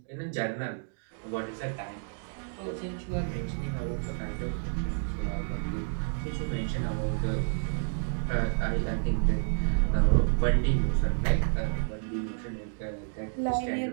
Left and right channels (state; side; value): silent; left; 58 dB below the other